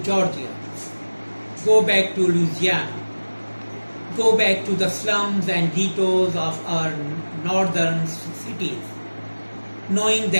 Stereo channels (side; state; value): both; inverted; correlation -1.00